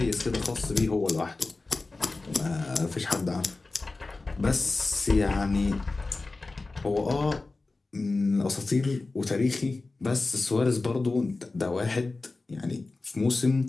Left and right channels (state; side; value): quieter; right; 3.4 dB